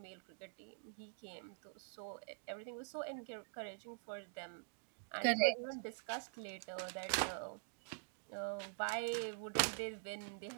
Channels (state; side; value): silent; left; digital silence